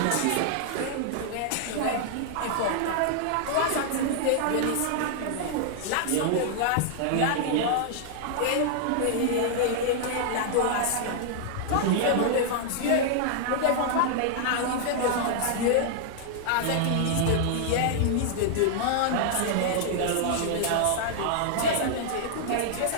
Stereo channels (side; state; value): both; different; correlation -0.01